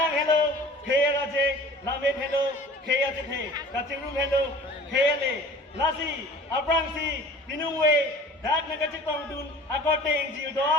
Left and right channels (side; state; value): both; normal; correlation 0.45